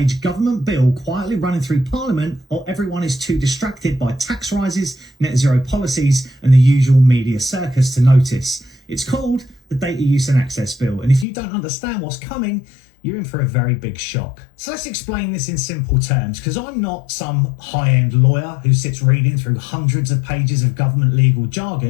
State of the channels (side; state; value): right; drops out; at 11.2 s